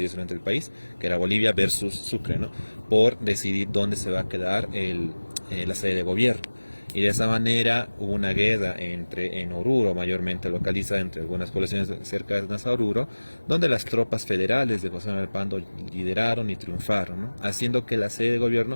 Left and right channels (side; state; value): both; inverted; correlation -1.00